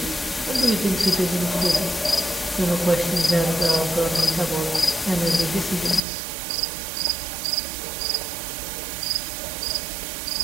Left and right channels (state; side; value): drops out; left; at 6.0 s